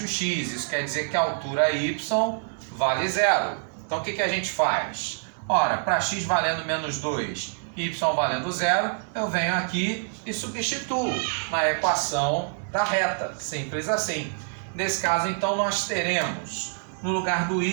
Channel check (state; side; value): silent; left; 60 dB below the other